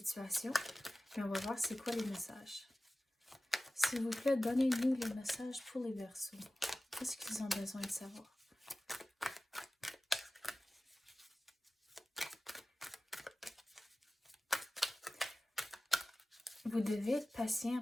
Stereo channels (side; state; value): both; normal; correlation 0.97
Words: Puis on va voir c'est quoi les messages. S'il vous plaît, donnez-nous les messages pour les Verseaux. Qu'est-ce qu'ils ont besoin de savoir? Vous devez être